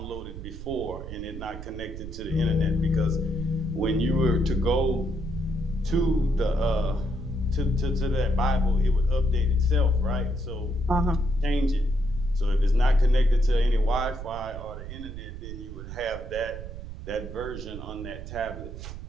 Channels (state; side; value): noise; right; rumble, 10 dB below the sound